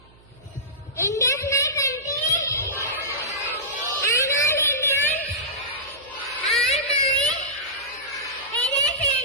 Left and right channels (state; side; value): noise; right; hum, 27 dB below the sound